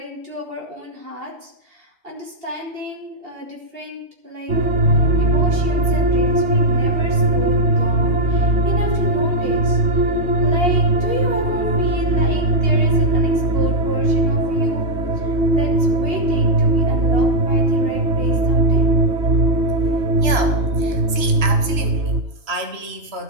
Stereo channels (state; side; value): late; left; 3.0 ms